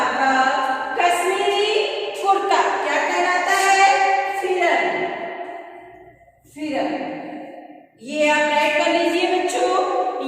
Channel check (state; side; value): identical; both; correlation 1.00